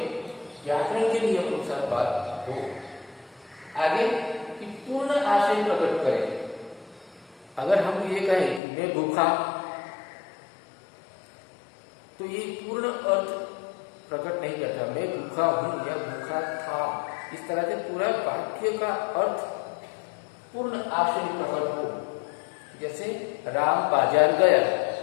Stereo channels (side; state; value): right; drops out; at 8.6 s